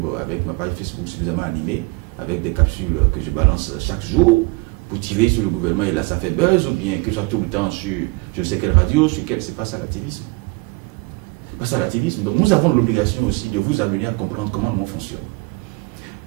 avec ma page Facebook suffisamment animée, avec des capsules que je balance chaque jour pour tirer sur le gouvernement, et là ça fait buzz, ou bien que je sois tout le temps sur je ne sais quelle radio, sur quelle, c'est pas ça l'activisme. C'est pas ça l'activisme. Donc nous avons l'obligation aussi de vous amener à comprendre comment nous fonctionne.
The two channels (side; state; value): left; quieter; 26.9 dB